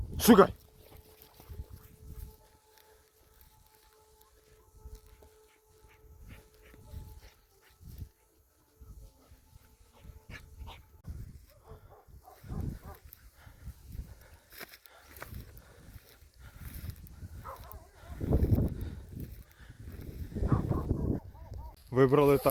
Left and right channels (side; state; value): both; identical; correlation 1.00